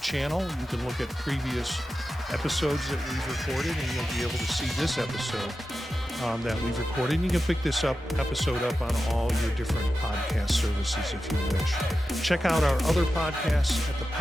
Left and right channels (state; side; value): normal; both; correlation 0.92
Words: channel. You can look at previous episodes that we've recorded, and you'll be able to see this episode that we've recorded. And you can pick this episode up on all your different podcast services if you wish. Check out our other podcasts at